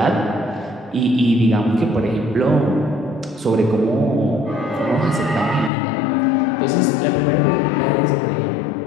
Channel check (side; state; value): right; drops out; at 5.7 s